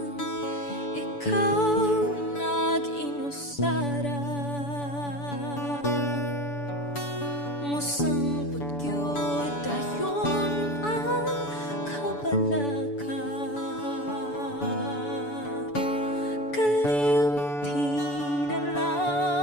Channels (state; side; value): late; right; 7.0 ms